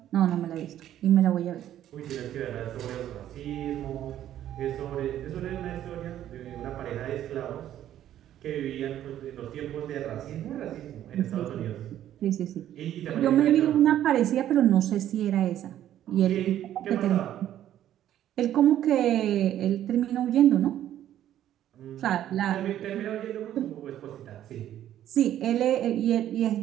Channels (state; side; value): quieter; left; 11.7 dB